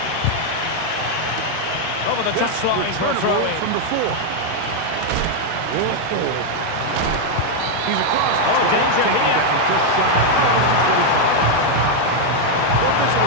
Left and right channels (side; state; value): both; different; correlation 0.00